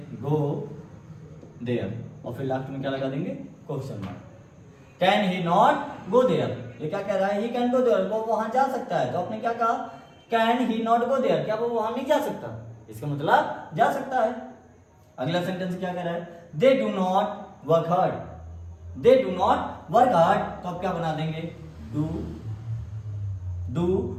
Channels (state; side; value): identical; both; correlation 1.00